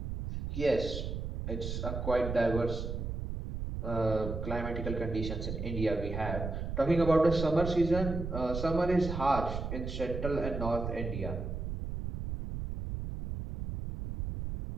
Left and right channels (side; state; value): right; noise; rumble, 4 dB below the sound